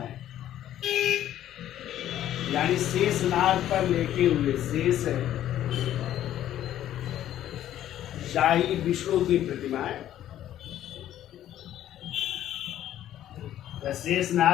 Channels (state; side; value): quieter; right; 12.1 dB